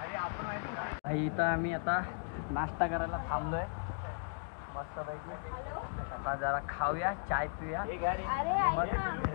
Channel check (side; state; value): right; silent; digital silence